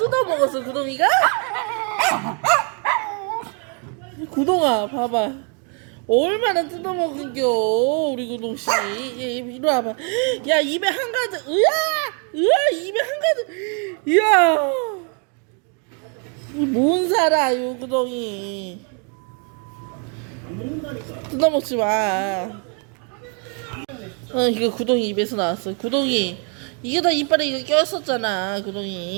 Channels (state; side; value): quieter; left; 39.1 dB